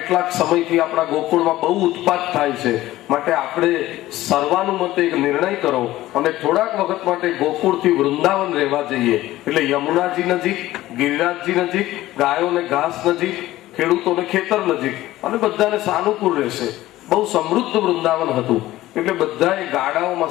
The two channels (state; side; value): quieter; right; 16.0 dB